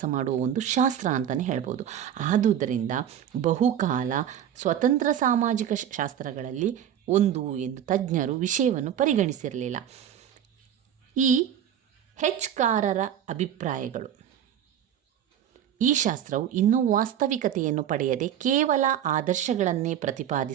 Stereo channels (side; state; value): left; quieter; 9.9 dB